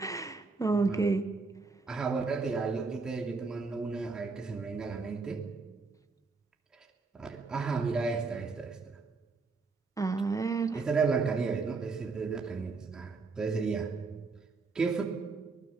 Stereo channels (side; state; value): left; quieter; 4.3 dB